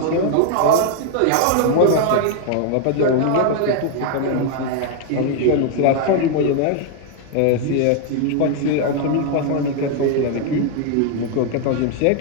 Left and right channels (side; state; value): both; different; correlation 0.00